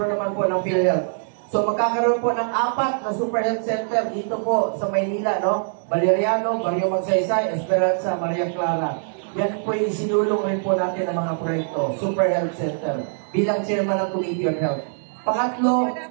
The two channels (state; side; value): silent; left; digital silence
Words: naman po ng PhilHealth. So magkakaroon po ng 4 na Super Health Center dito po sa Maynila, no? Valeriano, Barrio Magsaysay, Esperanza, Maria Clara. Yan po yung sinulong rin po natin ng mga proyekto, Super Health Center, bilang chairman ng Committee on Health. Pangatlo,